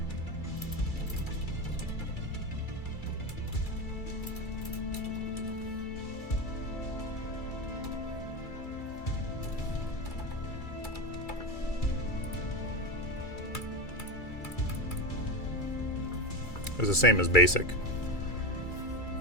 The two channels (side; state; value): right; late; 2.3 ms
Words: It was the same as basic.